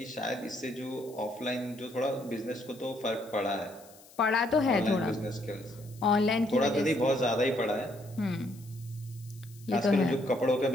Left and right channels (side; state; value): left; noise; hiss, 23 dB below the sound